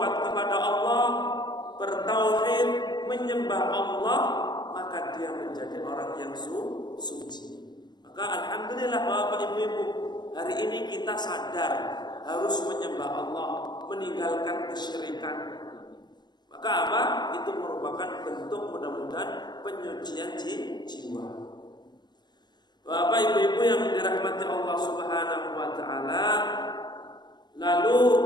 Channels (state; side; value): late; right; 0.21 ms